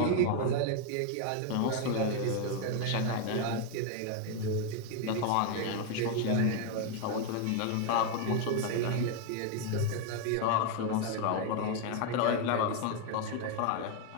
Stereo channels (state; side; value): different; both; correlation 0.01